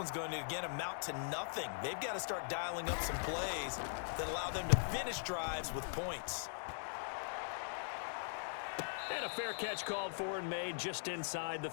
going to, again, amount to nothing. They've got to start dialing up some plays that allow them to finish drives with points. And a fair catch called for and made just inside the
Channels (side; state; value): right; silent; digital silence